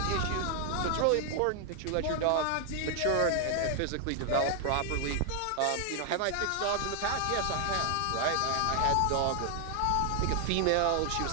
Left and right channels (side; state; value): both; different; correlation 0.00